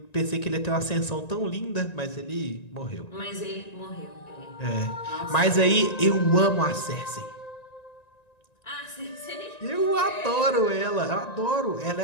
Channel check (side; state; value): right; late; 1.9 ms